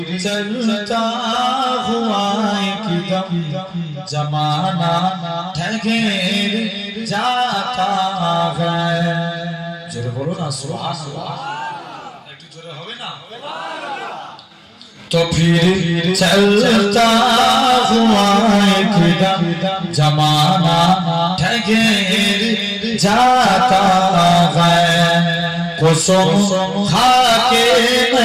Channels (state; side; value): identical; both; correlation 1.00